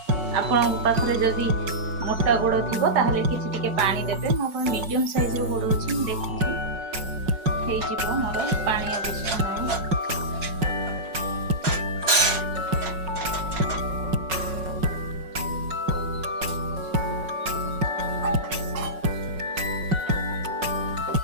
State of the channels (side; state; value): left; late; 5.4 ms